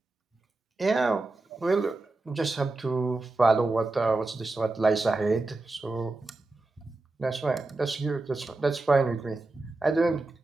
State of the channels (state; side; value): quieter; left; 3.1 dB